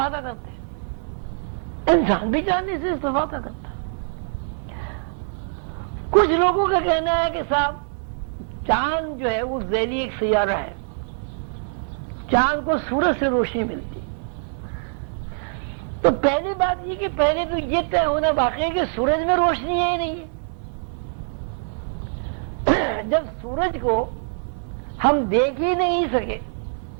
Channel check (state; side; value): silent; left; 56 dB below the other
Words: کرتے ہیں انسان بھی چاندنی سے استفادہ کرتا ہے. کچھ لوگوں کا کہنا ہے کہ صاحب چاند جو ہے وہ ذیلی ایک سیارہ ہے، چاند کو سورج سے روشنی ملتی. تو پہلی بات یہ کہ پہلے تو یہ طے ہونا باقی ہے کہ سورج میں روشنی ہے ہی نہیں ہے. جب سورج کو ہم دیکھ ہی نہیں سکے،